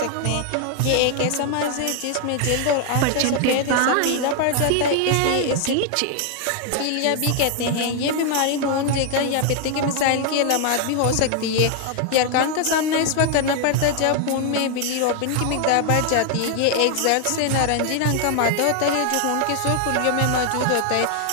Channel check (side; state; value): both; different; correlation 0.00